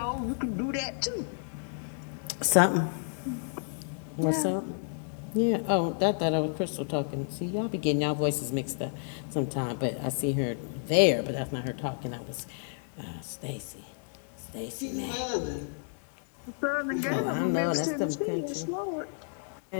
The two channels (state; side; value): silent; right; digital silence